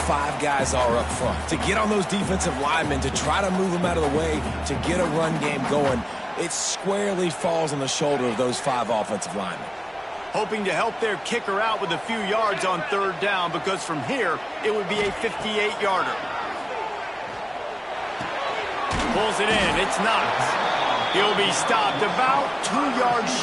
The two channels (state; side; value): identical; both; correlation 1.00